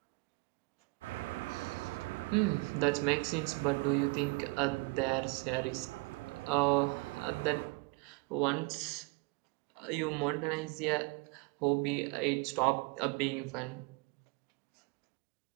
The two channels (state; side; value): quieter; left; 27.9 dB